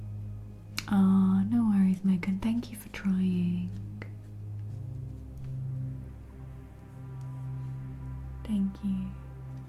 Aw, no worries, Megan. Thank you for trying. Thank you.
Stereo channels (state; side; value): identical; both; correlation 1.00